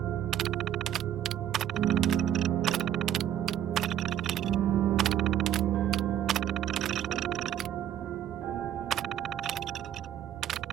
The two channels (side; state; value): left; quieter; 10.7 dB